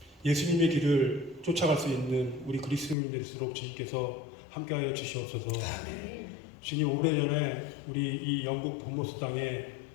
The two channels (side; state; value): right; drops out; at 3.0 s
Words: 예수님의 길을 쫓아갈 수 있는 우리 그리스도인이 될수록 주님께서 함께하여 주시옵소서. 주님, 오래전에 우리 이 영국 본모스 땅에